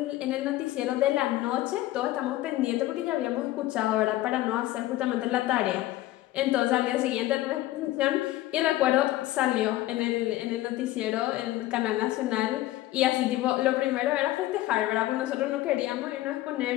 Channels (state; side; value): quieter; right; 16.0 dB